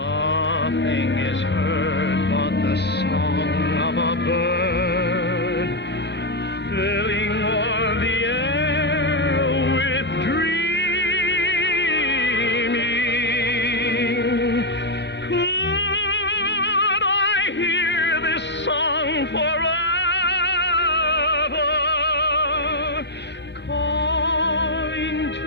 is heard but the song of a bird, filling all the air with dreaming. Could I hear this song forever, calling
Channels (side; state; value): both; normal; correlation 0.00